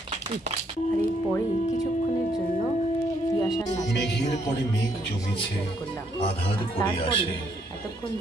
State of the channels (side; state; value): both; normal; correlation 0.71